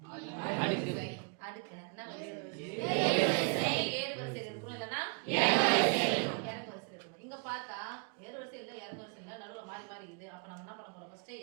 அடுக்கு என்ன ஏறு வரிசையில் இருக்கும், இல்லைன்னா இறங்கு வரிசையில் இருக்கணும். இங்க பார்த்தா ஏறு வரிசை இல்லை, இறங்கு வரிசை இல்லை, நடுவில் மாறி மாறி இருக்குது. அப்ப நம்ம என்ன பண்ண போறோம்? ஃபர்ஸ்ட்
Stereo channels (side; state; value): left; quieter; 34.6 dB